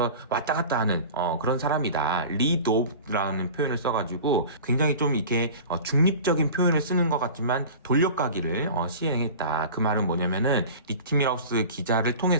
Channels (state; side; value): inverted; both; correlation -0.37